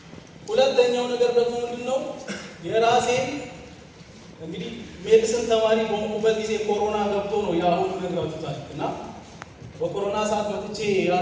ሁለተኛው ነገር ደግሞ ምንድነው የራሴን እንግዲህ ሜዲሲን ተማሪ በሆንኩበት ጊዜ ኮሮና ገብቶ ነው ያሁን ነግራችሁታል። እና በኮሮና ሰዓት መጥቼ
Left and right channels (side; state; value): both; identical; correlation 1.00